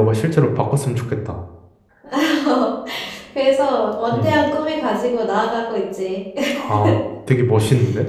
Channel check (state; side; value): identical; both; correlation 1.00